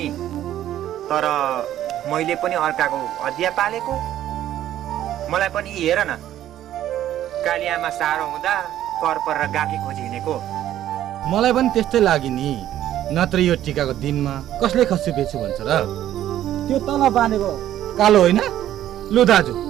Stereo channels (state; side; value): quieter; left; 12.2 dB